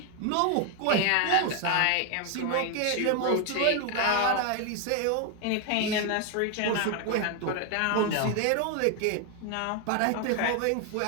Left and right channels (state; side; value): different; both; correlation 0.01